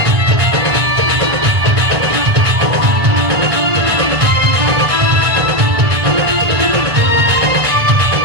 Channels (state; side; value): late; left; 1.6 ms